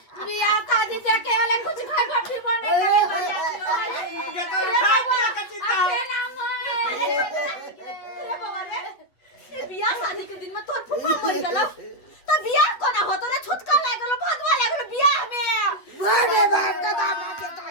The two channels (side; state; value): right; late; 8.4 ms